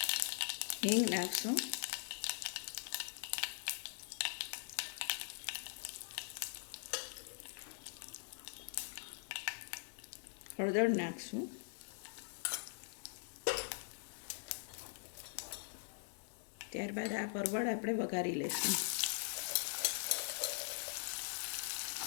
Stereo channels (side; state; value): right; silent; digital silence